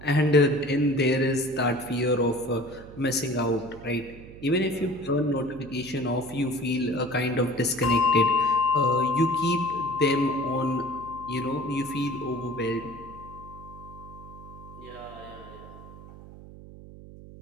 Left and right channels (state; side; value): noise; right; hum, 17 dB below the sound